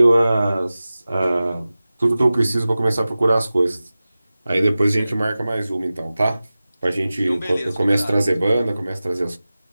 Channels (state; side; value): inverted; both; correlation -0.96